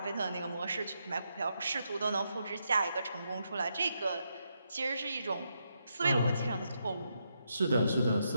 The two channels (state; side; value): inverted; both; correlation -0.82